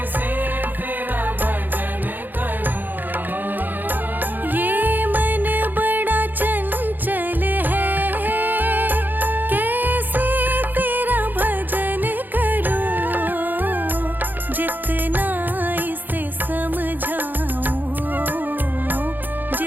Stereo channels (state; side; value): late; left; 0.087 ms